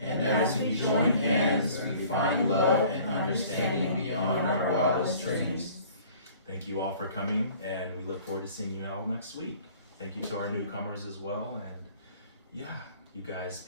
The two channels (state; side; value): inverted; both; correlation -0.51